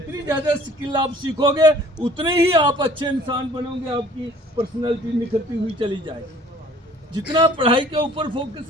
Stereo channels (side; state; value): both; normal; correlation 0.53